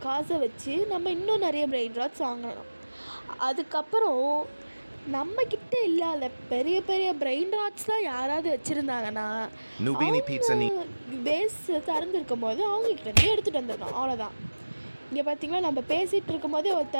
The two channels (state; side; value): inverted; both; correlation -1.00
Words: காசை வச்சு நம்ம இன்னும் நிறைய பிரெயின் ராட்ஸ் வாங்கணும். அதுக்கப்புறம் நம்மக்கிட்ட இல்லாத பெரிய பெரிய பிரெயின் ராட்ஸ்லாம் யாராவது வச்சுருந்தாங்கன்னா பேஸ் திறந்துருக்கும் போது அவங்கக்கிட்டேருந்து எடுத்துகிட்டு வந்துடணும். அவ்வளோதான். இங்கே பார்த்தீங்களா, நம்ம பேசிகிட்டு இருக்கும் போதே ஒரு